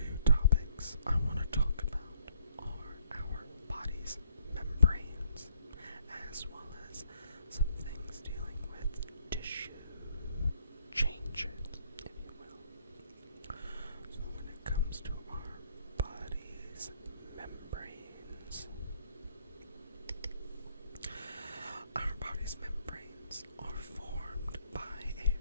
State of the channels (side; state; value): both; inverted; correlation -0.67